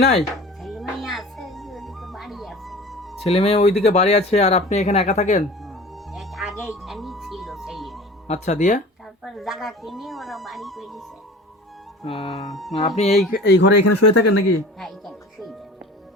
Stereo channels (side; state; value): both; normal; correlation 0.40